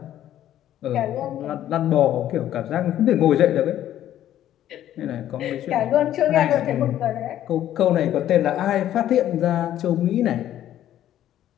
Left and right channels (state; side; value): quieter; right; 12.0 dB